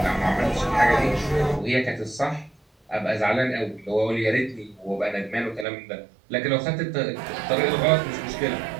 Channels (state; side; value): drops out; left; at 5.7 s